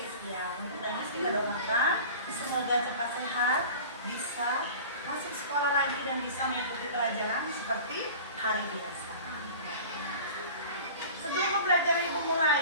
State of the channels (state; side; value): inverted; both; correlation -0.39